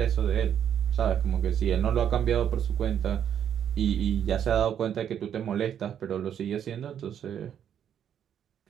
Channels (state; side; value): quieter; left; 9.2 dB